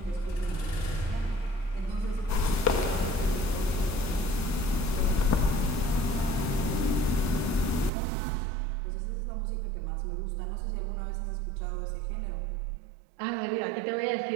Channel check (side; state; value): left; drops out; at 7.9 s